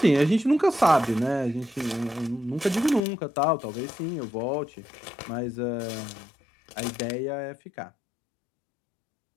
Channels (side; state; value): right; drops out; at 3.0 s